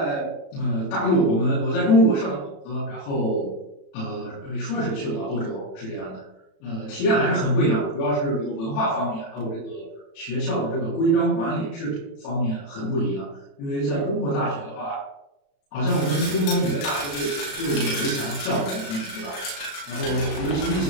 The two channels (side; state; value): right; late; 36 ms